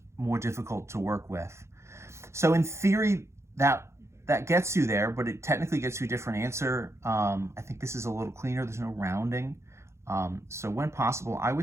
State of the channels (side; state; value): left; late; 0.13 ms